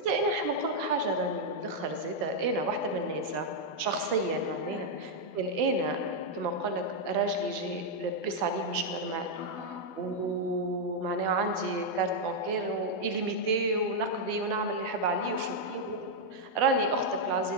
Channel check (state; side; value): late; right; 12 ms